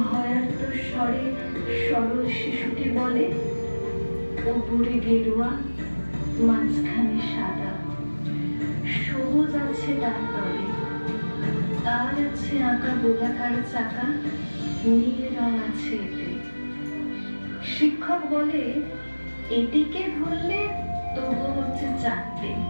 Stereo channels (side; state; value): both; inverted; correlation -1.00